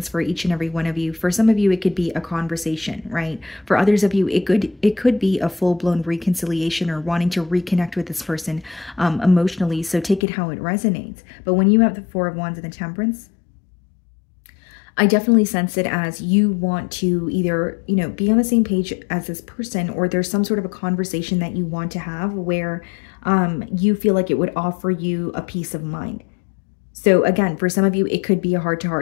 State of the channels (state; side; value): drops out; right; at 10.2 s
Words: for each and every one of you. For some of you, it could be a conversation, right? For others of you, it could be a full-blown reconciliation or wanting to reconnect with this person emotionally. So take it how it resonates. But when you have the Four of Wands and the Temperance, I definitely sense it as you want to either, be on the same page as this person, or there's some sort of a conversation that you want to have where you feel like it would offer you a peace of mind. So again, for some of you, it could be a